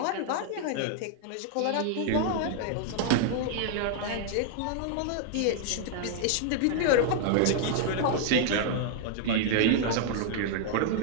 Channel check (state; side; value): different; both; correlation 0.00